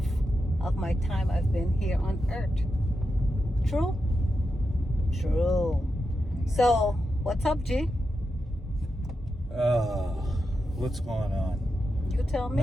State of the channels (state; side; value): normal; both; correlation 0.88